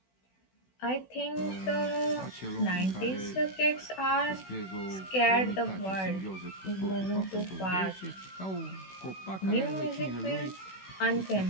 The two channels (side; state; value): right; late; 16 ms